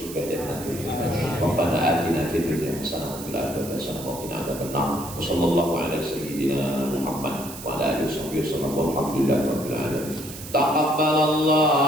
Jannatul Firdaus. Rabbana atina fid dunya hasanah wa fil akhirati hasanah wa qina adzabannar. Wassallallahu ala sayyidina Muhammad wa ala alihi wasallam. Walhamdulillahi rabbil alamin.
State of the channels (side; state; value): right; noise; hiss, 13 dB below the sound